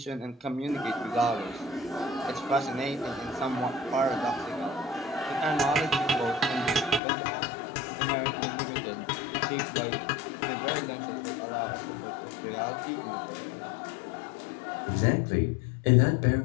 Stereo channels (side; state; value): right; drops out; at 7.0 s